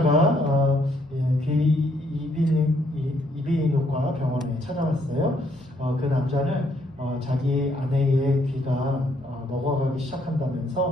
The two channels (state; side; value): normal; both; correlation 0.70